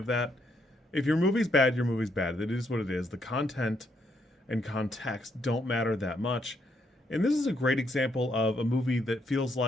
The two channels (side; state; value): both; normal; correlation 0.74